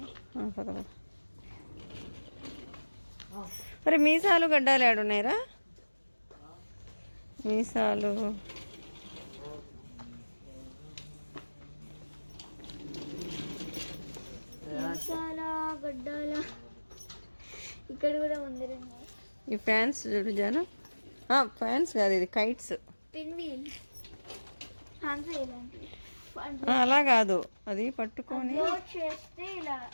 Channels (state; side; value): inverted; both; correlation -1.00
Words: పద. మరి మీసాలు గడ్డాలు ఏడున్నాయిరా? మీసాలు గడ్డాల ఇక్కడ కూడా ముందరే ఉన్నాయి. ఈ ఫ్యాన్స్ చూడు జాను. ఫ్యాన్స్ కాదు, ఇది కైట్స్. పిన్ వీల్ అలా కాదు, అది పట్టుకొని చేస్తే ఇలా